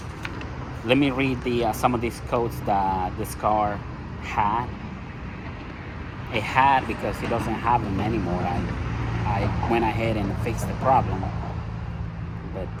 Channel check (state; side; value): identical; both; correlation 1.00